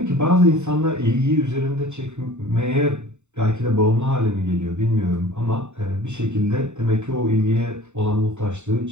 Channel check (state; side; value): late; left; 0.83 ms